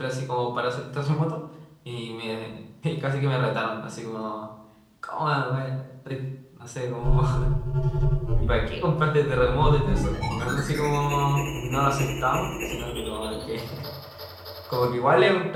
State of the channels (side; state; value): both; identical; correlation 1.00